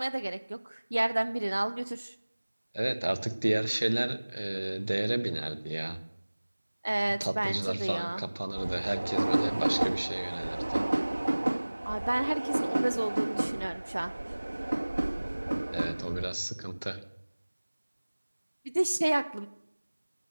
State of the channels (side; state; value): both; inverted; correlation -1.00